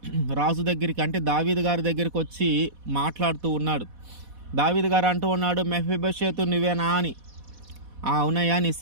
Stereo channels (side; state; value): left; late; 4.1 ms